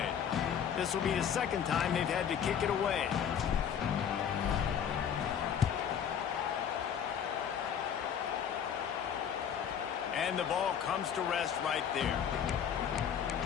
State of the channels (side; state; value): right; quieter; 8.3 dB